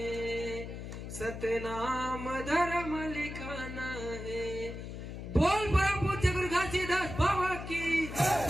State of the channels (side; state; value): left; noise; hum, 8 dB below the sound